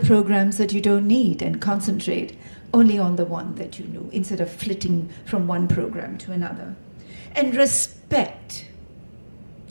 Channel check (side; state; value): both; inverted; correlation -1.00